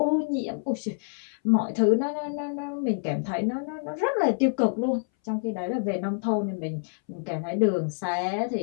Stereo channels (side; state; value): right; silent; 60 dB below the other